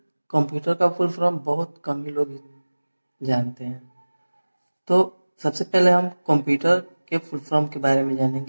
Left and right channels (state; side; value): inverted; both; correlation -1.00